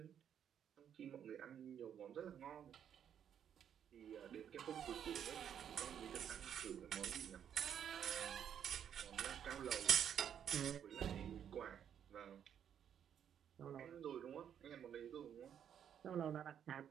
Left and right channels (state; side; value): quieter; left; 9.0 dB